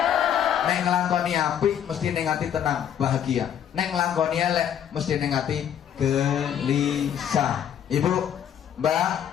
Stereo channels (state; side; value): quieter; right; 9.4 dB